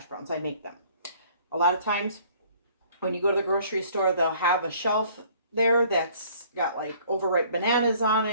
browns, I make them. A lot of times when you go to the grocery store, they'll have a shelf there that's got like overripe bananas on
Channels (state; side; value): inverted; both; correlation -0.56